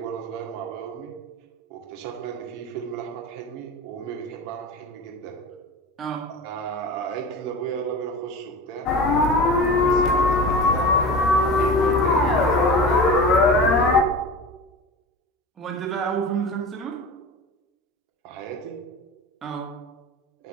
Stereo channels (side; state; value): both; normal; correlation 0.31